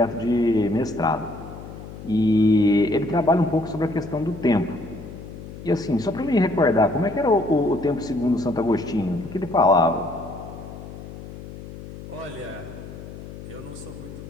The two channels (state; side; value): noise; left; hum, 13 dB below the sound